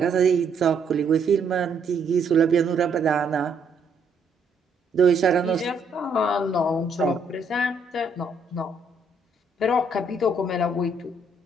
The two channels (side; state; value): left; quieter; 3.2 dB